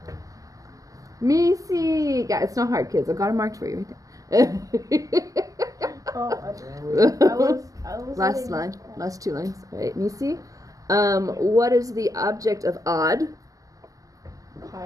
Misi. Yeah, it's not hard, kids. I've got it marked for you right there. Oh, I was Last letting- line, last two lines. All right, Misi. What is the object of odd?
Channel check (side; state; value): left; late; 0.16 ms